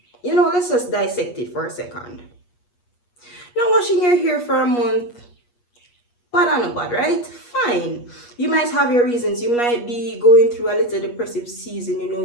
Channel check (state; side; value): late; right; 8.4 ms